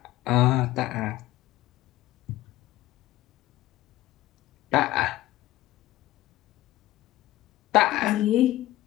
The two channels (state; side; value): quieter; right; 16.1 dB